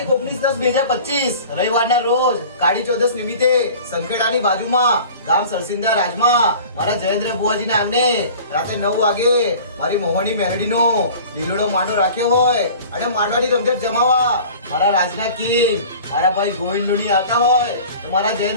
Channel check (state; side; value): inverted; both; correlation -0.43